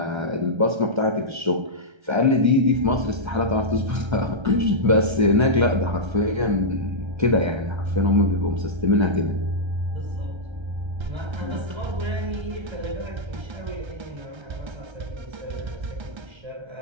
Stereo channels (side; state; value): left; late; 1.3 ms